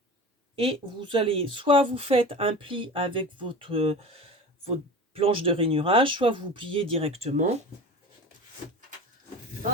et vous allez, soit vous faites un pli avec votre planche de rainurage, soit vous pliez directement.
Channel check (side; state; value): both; normal; correlation 0.33